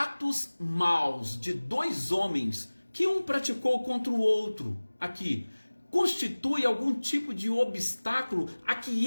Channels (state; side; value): inverted; both; correlation -1.00